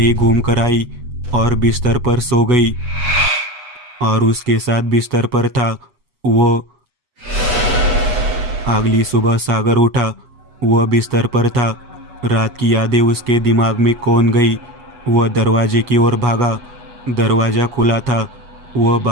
घूम कर आई और बिस्तर पर सो गई। और उसके साथ बिस्तर पर था वो। अगली सुबह सागर उठा। वह बिस्तर पर था। रात की यादें उसके दिमाग में कौन गई। वह दरवाजे की ओर भागा। दरवाजा खुला था। वह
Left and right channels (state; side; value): late; left; 8.2 ms